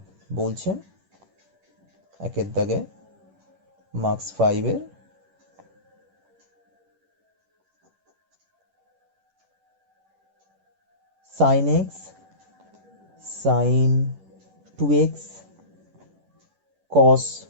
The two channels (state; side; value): late; left; 10 ms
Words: বলছে, একের দাগে marks 5-এর sin x sin 2x cos